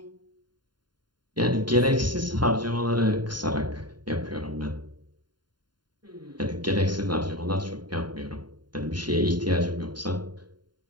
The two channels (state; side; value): late; left; 0.71 ms